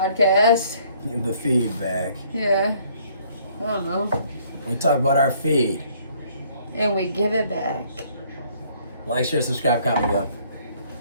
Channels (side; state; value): both; inverted; correlation -0.62